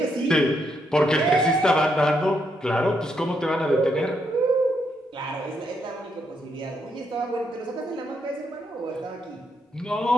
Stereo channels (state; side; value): normal; both; correlation 0.78